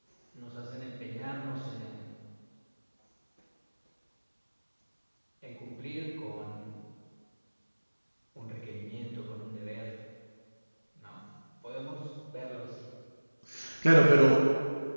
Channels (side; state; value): both; inverted; correlation -1.00